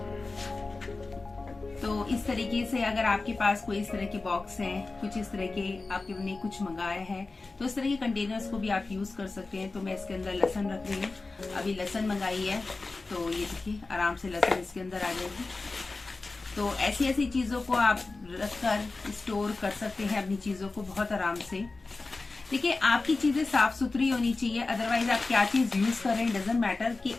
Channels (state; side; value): quieter; right; 3.6 dB